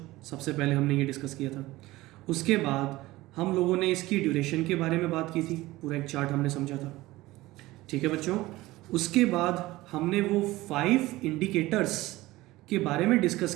सबसे पहले हमने ये डिस्कस किया था। उसके बाद हम लोगों ने इसकी ड्यूरेशन के बारे में बात की थी, पूरा एक चार्ट हमने समझा था। ठीक है बच्चों। उसके बाद हमने वो 5 इंडिकेटर्स के बारे में डिस्कस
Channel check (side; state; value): left; quieter; 18.5 dB